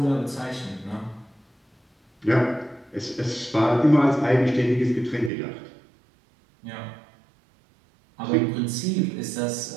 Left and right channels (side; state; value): left; drops out; at 5.3 s